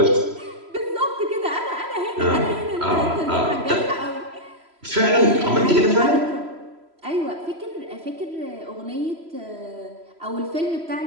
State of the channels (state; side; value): late; left; 3.0 ms